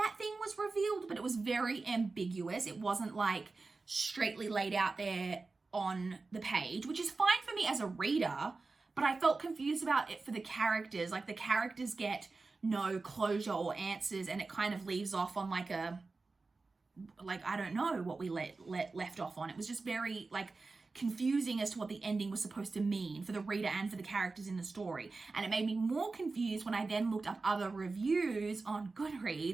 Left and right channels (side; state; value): left; quieter; 3.8 dB